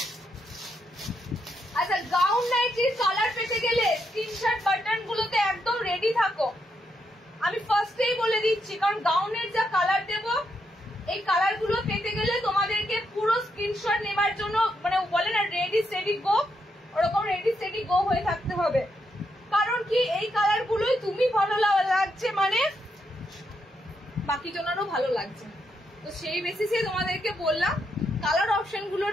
আচ্ছা গাউন নাইটির কালার পেতে গেলে স্ক্রিনশট বাটন গুলোতে একদম রেডি থাকো, আমি ফার্স্টেই বলে দিচ্ছি, কারণ গাউনের যা কালার দেব এই কালার গুলো পেতে গেলে তোমাদেরকে পুরো স্ক্রিনশট নেবার জন্য মানে বলে না রেডি স্টেডি গো, ওরকম রেডি স্টেডি গো হয়ে থাকতে হবে। কারণ কি এই কালার গুলোই তুমি ভালো লাগছে মানে বাকি জনেরও ভালো লাগছে, তো সেই বেসিসে তোমাদেরকে বললাম কালার অপশন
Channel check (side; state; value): both; normal; correlation 0.80